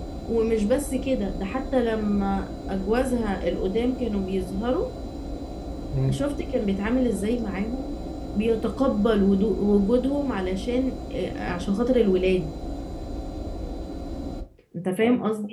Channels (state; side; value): identical; both; correlation 1.00